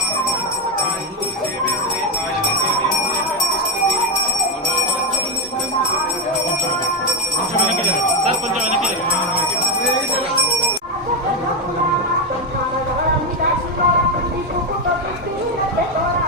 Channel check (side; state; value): both; normal; correlation 0.06